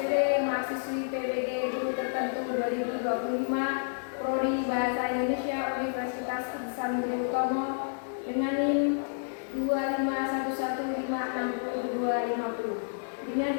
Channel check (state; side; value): silent; right; digital silence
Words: mahasiswi PBG Guru Tertentu 2025, Prodi Bahasa Indonesia Universitas Ihsan Budi Utomo dengan NIM 251156250. Dengan